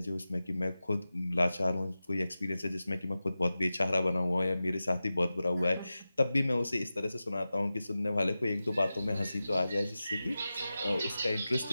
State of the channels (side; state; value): both; inverted; correlation -0.94